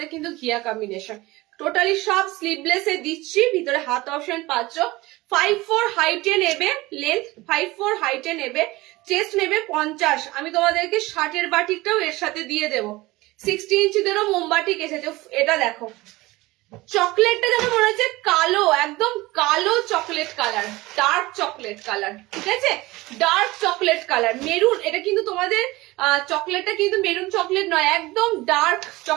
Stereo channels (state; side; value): quieter; left; 20.2 dB